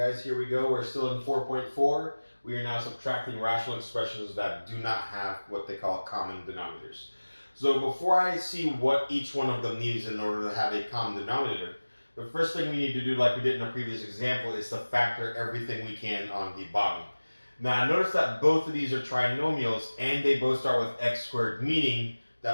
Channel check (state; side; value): inverted; both; correlation -1.00